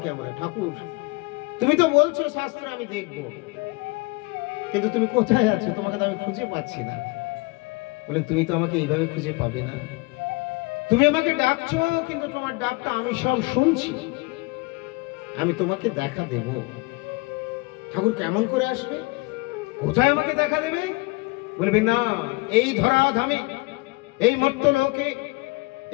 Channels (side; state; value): right; quieter; 26.0 dB